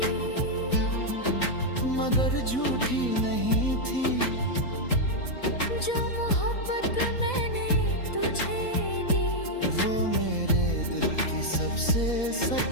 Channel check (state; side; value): late; right; 4.1 ms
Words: मगर झूठी नहीं थी, जो मोहब्बत मैंने तुझे दी, वो मेरे दिल की सबसे